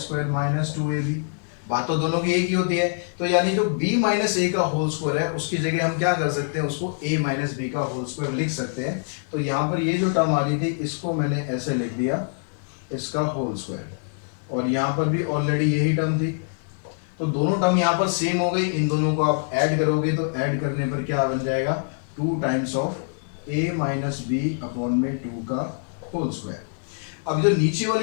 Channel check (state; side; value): silent; right; digital silence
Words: - 2ab। बात तो दोनों की एक ही होती है। तो यानी जो b - a का होल स्क्वायर है उसकी जगह हम क्या कर सकते हैं, उसको a - b का होल स्क्वायर लिख सकते हैं। तो यहाँ पर ये जो टर्म आ रही थी इसको मैंने ऐसे लिख दिया, इसका होल स्क्वायर, और यहाँ पर भी ऑलरेडी यही टर्म थी। तो दोनों टर्म यहाँ पर सेम हो गई। इन दोनों को आप ऐड करोगे तो ऐड करने पर क्या बन जाएगा, 2 टाइम्स ऑफ a - b/2 का होल स्क्वायर। अब जो नीचे